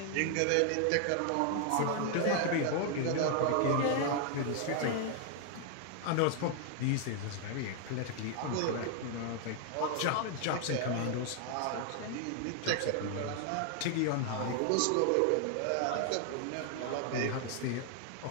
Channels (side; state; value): both; different; correlation 0.00